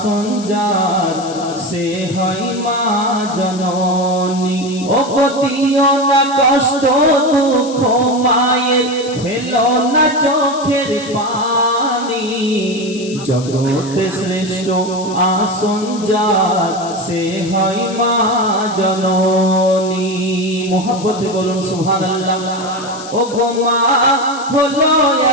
যার সে হয় মা জননী। ও পতিও না কষ্ট দুঃখ মায়ের, ফেলো না চোখের পানি। জগতে শ্রেষ্ঠ আসন যার সে হয় মা জননী। মোহাব্বতে বলুন সুবহানাল্লাহ। ও গো মা হলো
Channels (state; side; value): noise; left; hiss, 15 dB below the sound